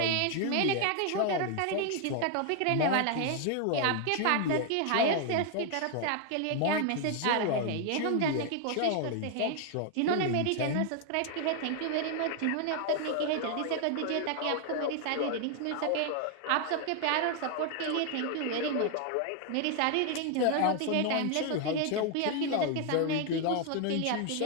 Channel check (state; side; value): different; both; correlation 0.00